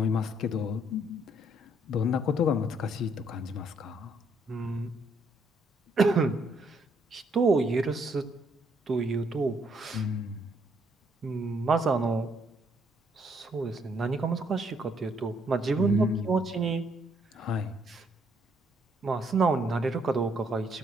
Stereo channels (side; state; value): both; normal; correlation 0.70